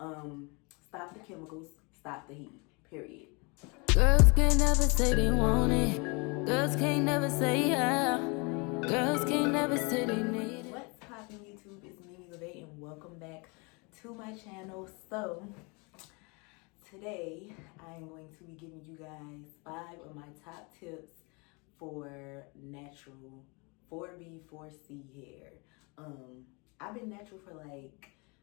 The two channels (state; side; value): quieter; right; 30.1 dB